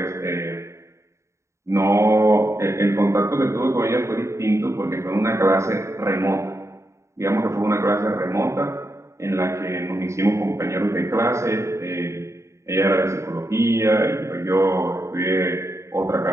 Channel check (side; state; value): left; late; 0.14 ms